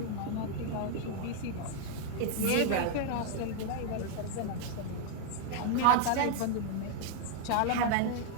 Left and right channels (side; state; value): both; different; correlation 0.00